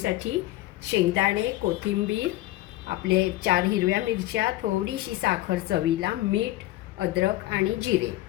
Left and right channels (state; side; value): quieter; right; 16.5 dB